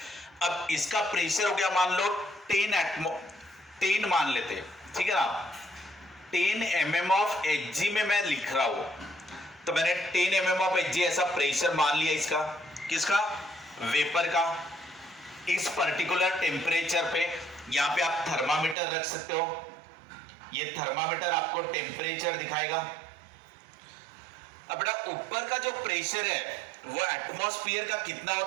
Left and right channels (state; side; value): drops out; left; at 18.8 s